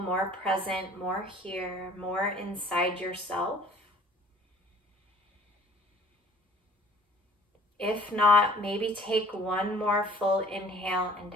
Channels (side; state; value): both; normal; correlation 0.52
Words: present, more here, more inside yourself? If not, maybe take one more full inhale and